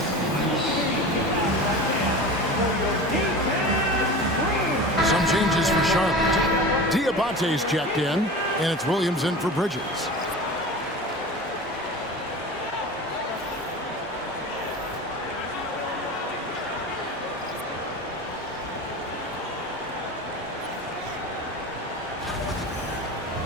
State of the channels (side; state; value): both; normal; correlation 0.33